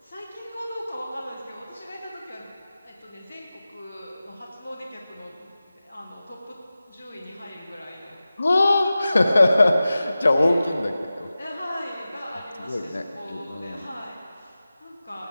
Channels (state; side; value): inverted; both; correlation -0.95